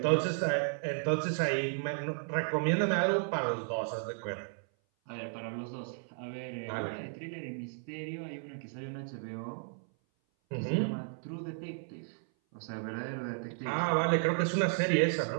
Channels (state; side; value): silent; left; 55 dB below the other